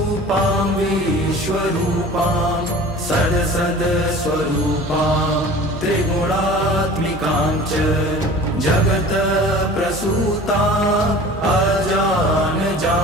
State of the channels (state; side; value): normal; both; correlation 0.42